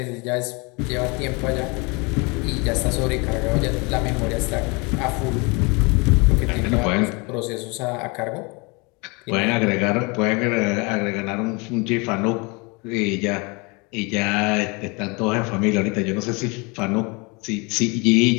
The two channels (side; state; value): right; quieter; 29.1 dB